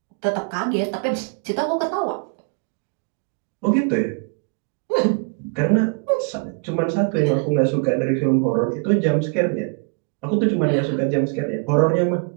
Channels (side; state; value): left; quieter; 38.4 dB